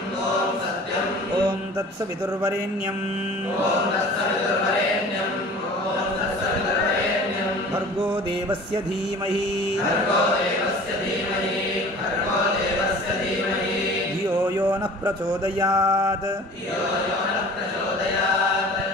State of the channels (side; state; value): both; normal; correlation 0.43